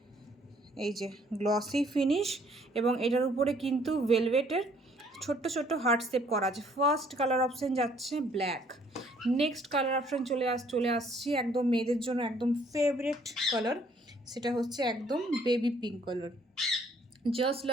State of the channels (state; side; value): normal; both; correlation 0.62